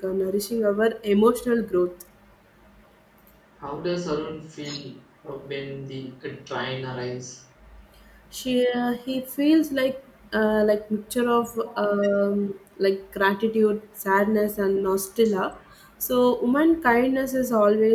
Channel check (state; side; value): identical; both; correlation 1.00